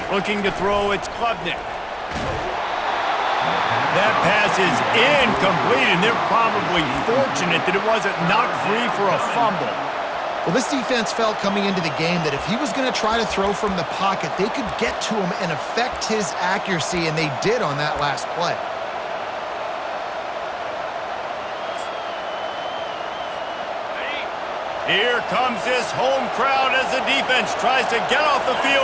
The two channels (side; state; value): both; identical; correlation 1.00